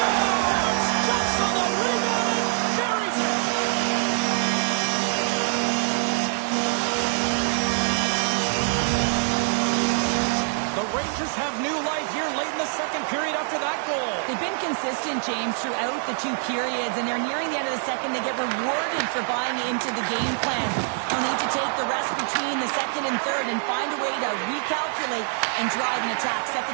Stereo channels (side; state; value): left; silent; 56 dB below the other